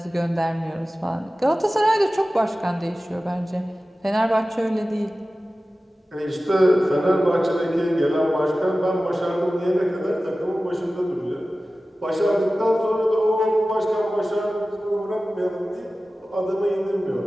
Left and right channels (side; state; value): both; normal; correlation 0.96